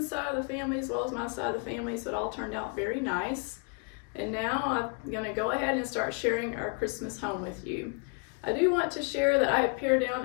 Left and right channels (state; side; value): quieter; right; 37.6 dB